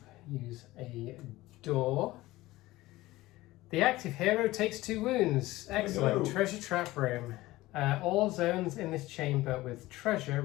use a door. The active hero takes 2 wounds. Excellent. Hello. Treasure trap room. All zones in this chamber with treasure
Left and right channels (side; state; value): right; quieter; 18.1 dB